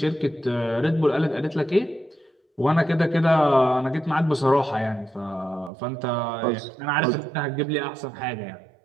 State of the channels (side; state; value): left; drops out; at 5.7 s